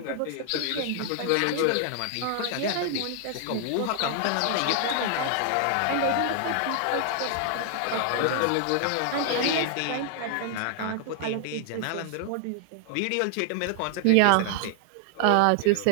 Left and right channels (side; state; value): both; different; correlation 0.00